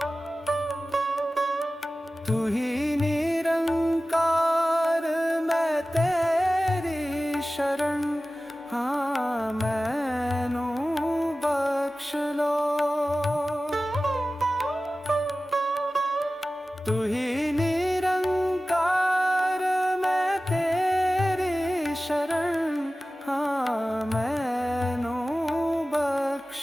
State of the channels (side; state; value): both; normal; correlation 0.96